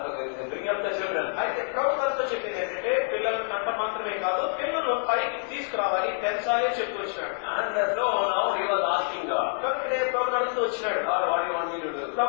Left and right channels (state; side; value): silent; right; digital silence